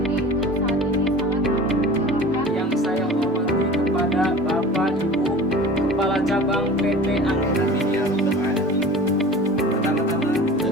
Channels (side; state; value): both; normal; correlation 0.39